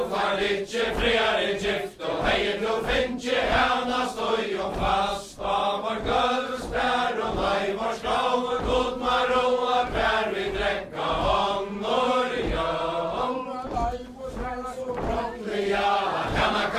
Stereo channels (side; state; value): both; identical; correlation 1.00